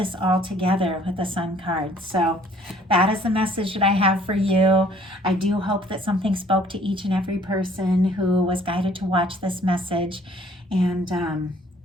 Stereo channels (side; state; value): both; normal; correlation 0.58